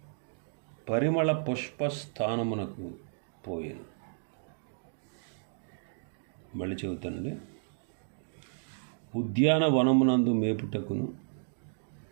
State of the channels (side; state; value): left; silent; digital silence